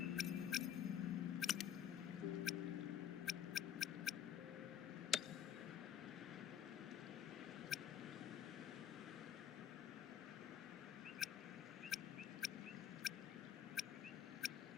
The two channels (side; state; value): right; quieter; 9.6 dB